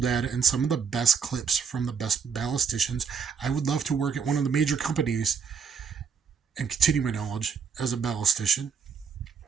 and some of the best clips from the best ballisticians. I would love to work at one of the major companies and continue my knowledge as a ballistician.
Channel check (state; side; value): quieter; left; 6.3 dB